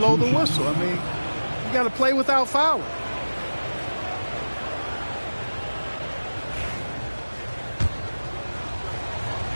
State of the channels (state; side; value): inverted; both; correlation -1.00